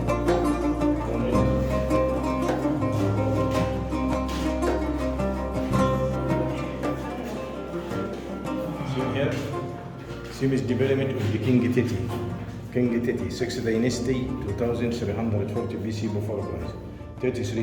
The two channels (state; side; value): identical; both; correlation 1.00